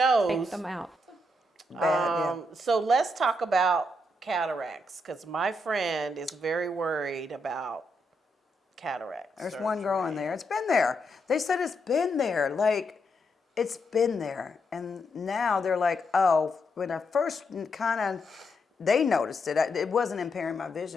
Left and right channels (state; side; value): normal; both; correlation 0.80